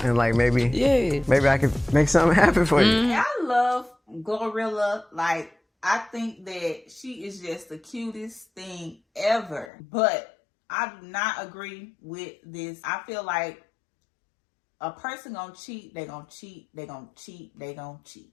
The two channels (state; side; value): drops out; right; at 9.7 s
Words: and like maybe I could make something happen for you. I love Glorilla. Like, I think that she is just the cutest thing ever. But I do not agree with this. I feel like a person gonna cheat, they gonna cheat, they gonna cheat, they gonna cheat.